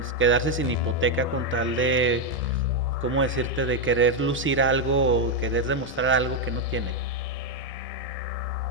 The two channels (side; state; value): both; normal; correlation 0.04